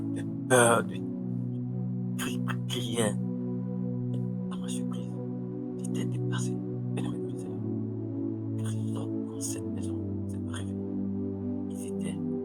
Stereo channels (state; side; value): identical; both; correlation 1.00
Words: de peur, de criais. À ma surprise, j'étais dépassé. Bien-aimé de Seigneur. Personne dans cette maison ne s'est pas réveillé. Ils étaient